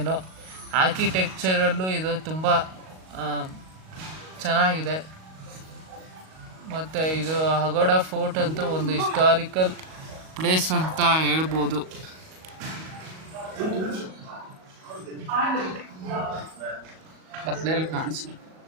ಆರ್ಕಿಟೆಕ್ಚರಲ್ಲೂ ಇದು ತುಂಬ ಚೆನ್ನಾಗಿದೆ. ಮತ್ತು ಇದು ಅಗೋಡಾ ಫೋರ್ಟ್ ಅಂತೂ ಒಂದು ಹಿಸ್ಟಾರಿಕಲ್ ಪ್ಲೇಸ್ ಅಂತ ಹೇಳ್ಬೋದು. ಕತ್ಲೆಯಲ್ಲಿ ಕಾಣಿಸು.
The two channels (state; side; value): late; left; 38 ms